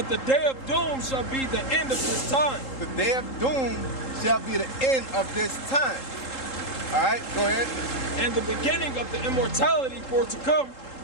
the day of doom shall be the end of this time. The day of doom shall be the end of this time. All right, go ahead. And the beginning of the immortality for to come.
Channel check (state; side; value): late; right; 3.8 ms